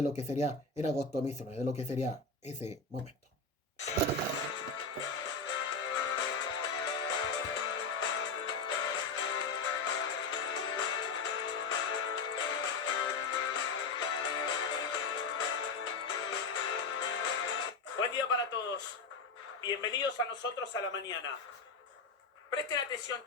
lo que sería en agosto mismo, de lo que sería ese momento? Buen día para todos. Bienvenidos a nosotros a la mañana. Presten atención,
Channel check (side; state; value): right; quieter; 4.2 dB